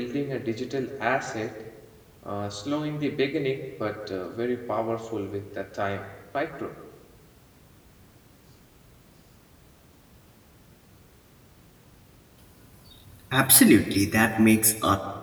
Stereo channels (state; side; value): identical; both; correlation 1.00